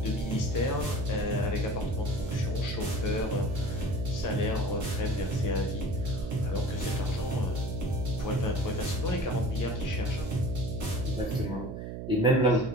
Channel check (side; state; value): right; noise; hum, 7 dB below the sound